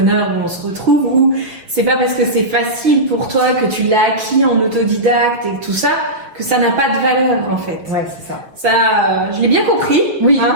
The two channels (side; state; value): left; late; 6.2 ms